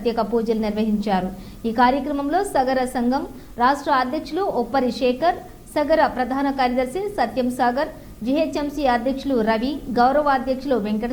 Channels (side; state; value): both; identical; correlation 1.00